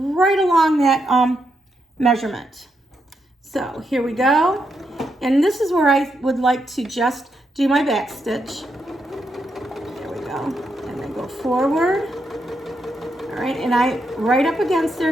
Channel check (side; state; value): both; normal; correlation 0.81